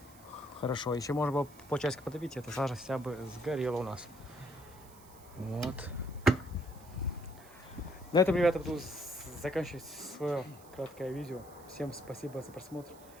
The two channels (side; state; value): right; noise; hiss, 22 dB below the sound